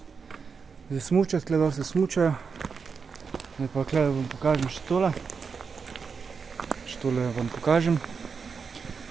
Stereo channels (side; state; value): left; quieter; 5.5 dB